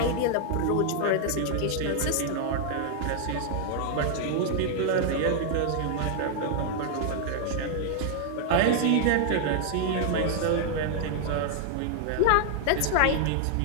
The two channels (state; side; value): different; both; correlation -0.01